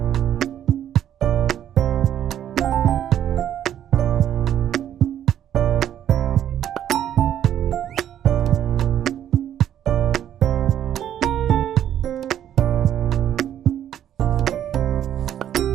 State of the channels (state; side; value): quieter; left; 10.6 dB